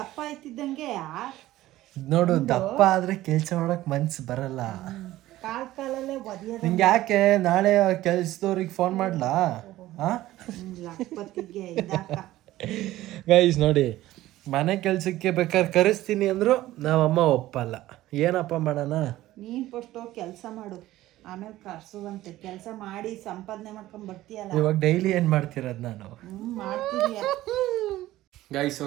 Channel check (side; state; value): left; quieter; 15.7 dB